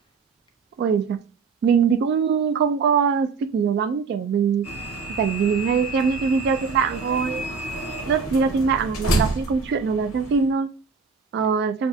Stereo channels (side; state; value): left; quieter; 5.2 dB